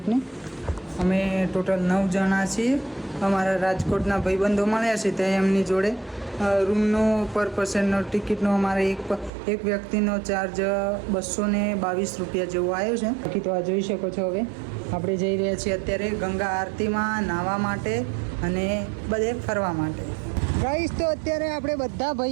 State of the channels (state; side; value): drops out; left; at 9.3 s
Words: અમે ટોટલ 9 જણા છીએ. અમારા રાજકોટના ભાઈબંધો મળ્યા છે ત્યાં એમની જોડે રૂમનો પર પર્સનનો ટિકિટનો અમારે એક વ્યક્તિનો ચાર્જ 222 રૂપિયા જેવો આવ્યો છે. બાકી તો આ જોઈ શકો છો. હવે આપણે જઈ રહ્યા છીએ અત્યારે ગંગા આરતીમાં નાહવા માટે અને બધે ફરવા માટે. ગાઈસ તો અત્યારે આપણે બધા